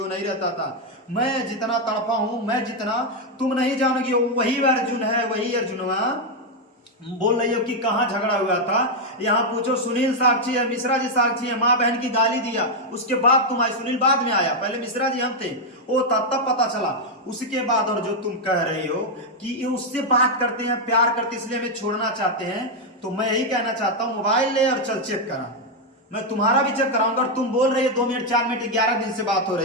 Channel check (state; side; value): normal; both; correlation 0.01